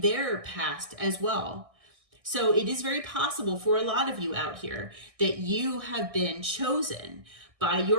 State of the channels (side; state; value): left; late; 1.6 ms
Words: their past as well. So it is very possible for a lot of you out here that you have been chosen by